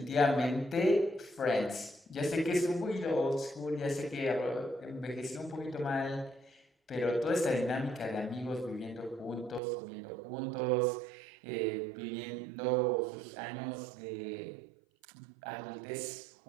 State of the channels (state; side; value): drops out; left; at 9.6 s